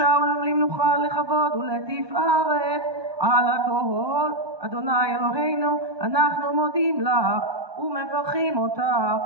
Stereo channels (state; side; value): late; left; 1.2 ms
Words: ולמנוחה לכבוד ולתפארת על הכל אדוני אלוהינו אנחנו מודים לך ומברכים אותך